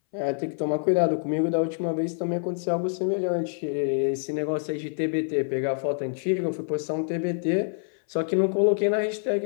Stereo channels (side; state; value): right; silent; 60 dB below the other